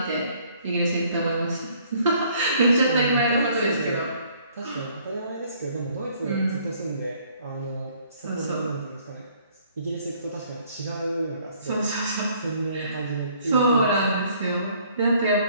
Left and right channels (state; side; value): inverted; both; correlation -0.61